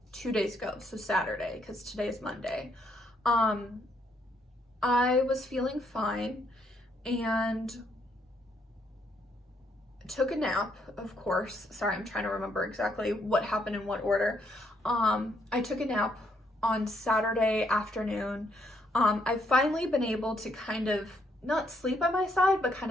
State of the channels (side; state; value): both; normal; correlation 0.73